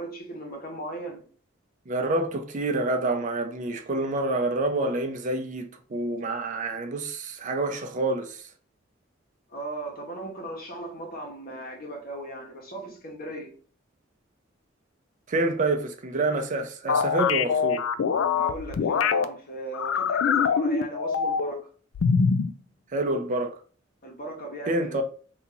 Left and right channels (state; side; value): normal; both; correlation 0.08